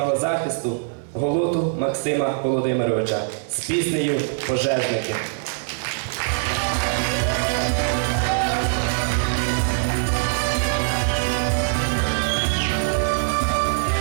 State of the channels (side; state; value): left; silent; digital silence